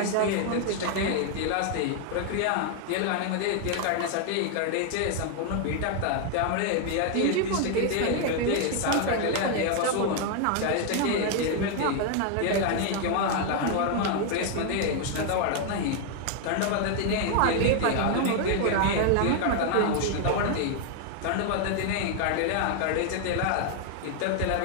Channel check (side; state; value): both; different; correlation 0.00